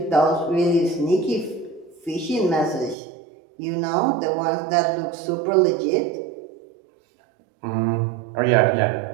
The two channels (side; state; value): left; drops out; at 3.0 s